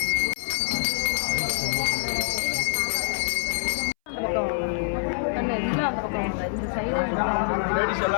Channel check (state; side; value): silent; right; 61 dB below the other